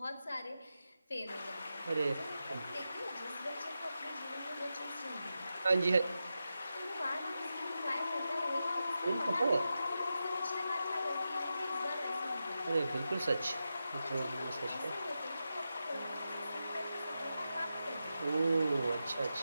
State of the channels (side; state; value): both; inverted; correlation -0.90